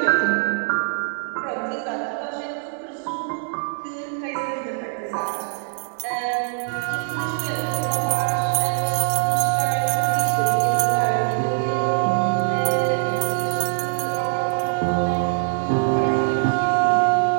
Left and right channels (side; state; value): left; silent; 64 dB below the other